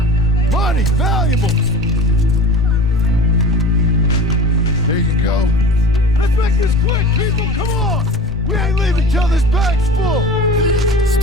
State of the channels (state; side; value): normal; both; correlation 0.37